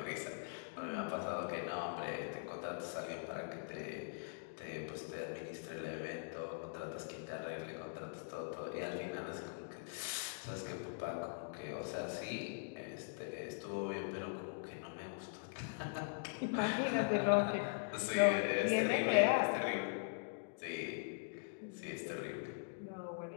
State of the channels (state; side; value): silent; right; digital silence